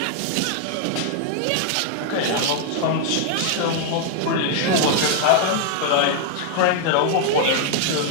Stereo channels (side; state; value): both; different; correlation 0.00